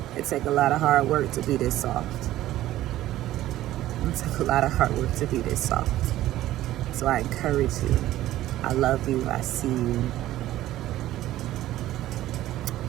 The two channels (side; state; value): left; quieter; 14.5 dB